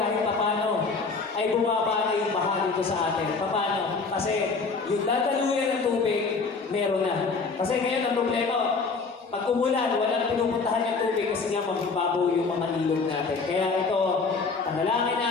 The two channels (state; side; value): quieter; right; 4.5 dB